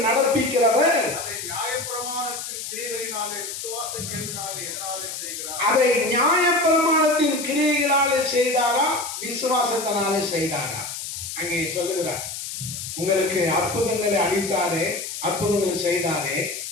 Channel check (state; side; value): noise; left; hiss, 7 dB below the sound